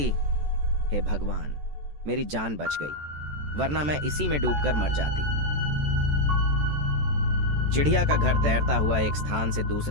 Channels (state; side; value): late; left; 14 ms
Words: हे भगवान, मेरी जान बच गई, वरना मैं इसी में डूबकर मर जाती। चिड़िया का घर तैरता हुआ एक स्थान से